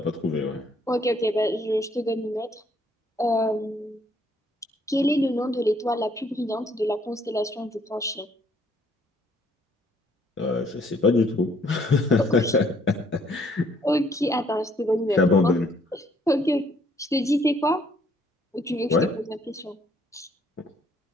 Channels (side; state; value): both; normal; correlation 0.65